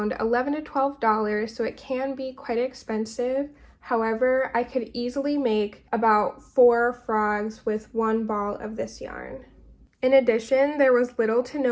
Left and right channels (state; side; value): identical; both; correlation 1.00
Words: $11 to $12, so it can be quite expensive. However, I could easily make about 4 frogs with 1 ball of this yarn. In addition, there was little to